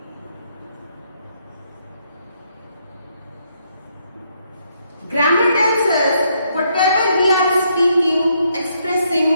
Grammar tells us whatever we are speaking, expressing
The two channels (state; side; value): inverted; both; correlation -0.74